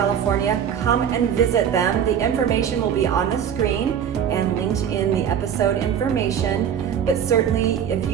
Come and visit them. The information will be on the screen and linked in the episode information. But certainly, if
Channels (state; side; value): quieter; left; 8.6 dB